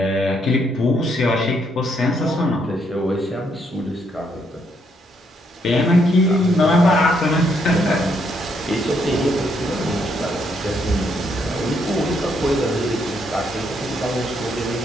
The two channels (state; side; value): normal; both; correlation 0.73